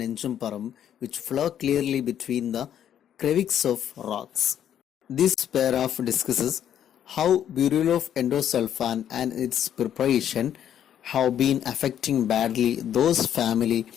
which flow clearly between the crevices of rocks. This paragraph discusses how burial of endosulfan and its preparation have been affecting badly those family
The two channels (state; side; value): quieter; right; 10.0 dB